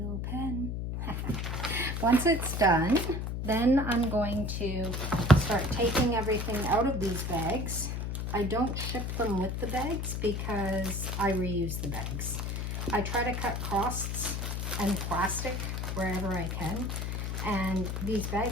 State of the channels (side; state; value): left; noise; hum, 2 dB below the sound